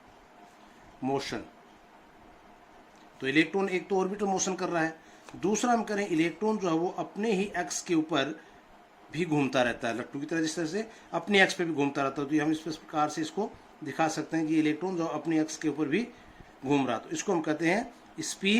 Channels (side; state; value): both; identical; correlation 1.00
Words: मोशन। तो इलेक्ट्रॉन एक तो ऑर्बिटल मोशन कर रहा है, दूसरा हम करें इलेक्ट्रॉन जो है वो अपने ही एक्स के ऊपर भी घूमता रहता है, लट्टू की तरह जिस तरह से अपने एक्स पे भी घूमता रहता है। तो हम इस प्रकार से इसको दिखा सकते हैं कि इलेक्ट्रॉन जो अपने एक्स के ऊपर भी घूम रहा, तो इसको हम कहते हैं